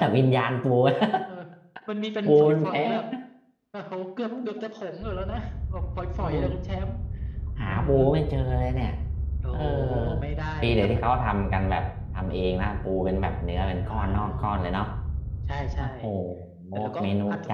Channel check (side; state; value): both; identical; correlation 1.00